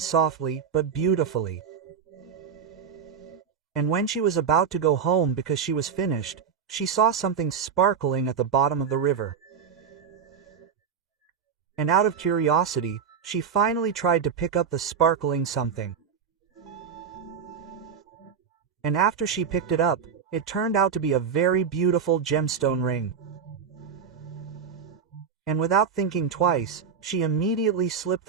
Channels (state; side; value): quieter; left; 6.8 dB